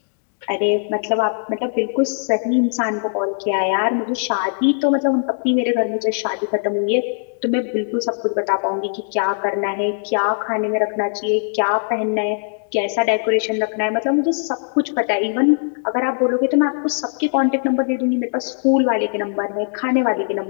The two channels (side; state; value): right; silent; digital silence